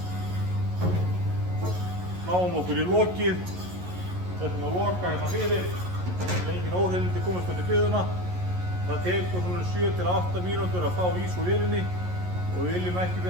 Náum okkur í lokið, setjum að loka hérna fyrir, engin óhreinindi komast inn í biðuna. Það tekur svona 7 til 8 mínútur að fá ís úr vélinni og við viljum ekki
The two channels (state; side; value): late; left; 11 ms